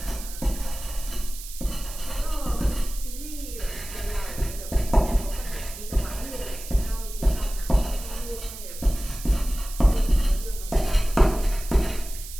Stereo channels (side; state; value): right; noise; hiss, 12 dB below the sound